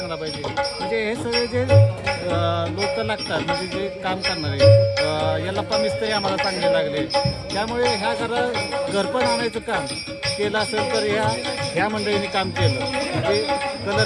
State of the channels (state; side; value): identical; both; correlation 1.00